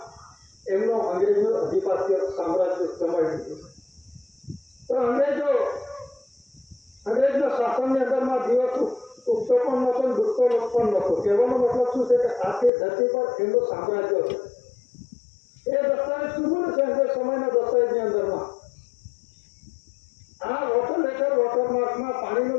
એમનો અંગ્રેજનું અધિપત્ય સામ્રાજ્ય જમાવી દીધું. તો અંગ્રેજના શાસનની અંદરમાં દિવસ ઉગતો પણ નહોતો, ડૂબતો પણ નહોતો. કહેવાનો મતલબ શું છે કે આખી ધરતી પર એમનું સામ્રાજ્ય હતું. એ દસ્તાવેજ શું બોલે છે અંગ્રેજ સમયના દસ્તાવેજની અંદરમાં આ વોટર લેટર વોટરમાર્કમાં પાણીનું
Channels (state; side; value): drops out; right; at 12.7 s